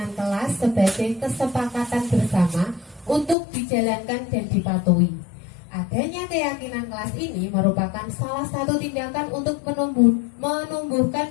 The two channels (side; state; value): right; drops out; at 3.4 s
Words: kelas sebagai kesepakatan bersama untuk dijalankan dan dipatuhi. Adanya keyakinan kelas ini merupakan salah satu tindakan untuk